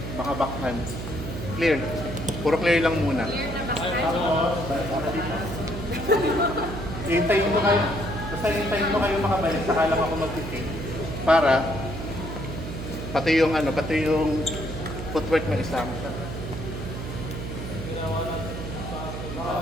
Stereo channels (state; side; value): noise; right; hum, 7 dB below the sound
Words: mga backhand clear puro clear lang muna tapos balik ako dito hintayin mo kayo basta hintayin mo kayo makabalik saka lang ako mag-feed para pati yung footwork na isama siya.